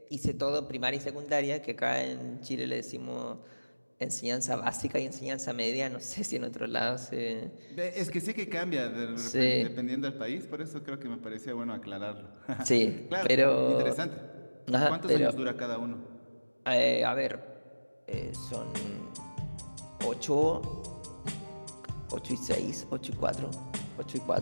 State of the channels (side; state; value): both; inverted; correlation -1.00